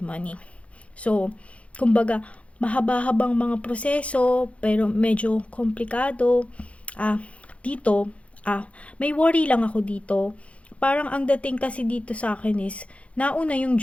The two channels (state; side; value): late; right; 0.063 ms